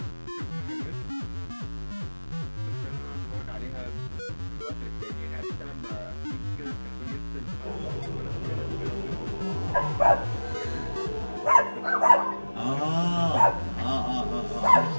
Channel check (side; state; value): both; inverted; correlation -1.00